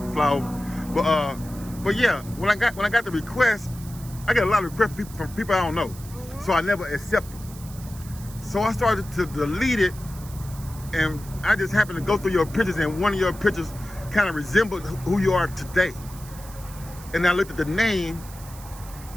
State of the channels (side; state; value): right; noise; hiss, 18 dB below the sound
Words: fly over. But yeah, when I got the request, I get a lot of requests from people I don't know, so I never accept them. So I started to delete it, and I just happened to go through your pictures, and one of your pictures kind of resembled who you are today. And I looked at the name,